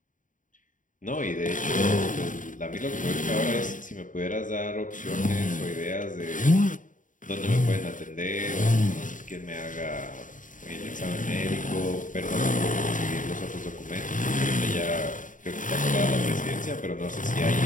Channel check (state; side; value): late; right; 0.38 ms